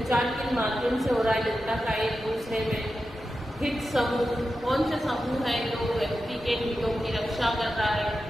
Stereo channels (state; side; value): normal; both; correlation 0.91